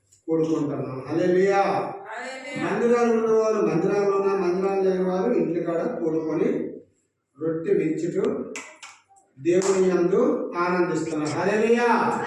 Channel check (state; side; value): identical; both; correlation 1.00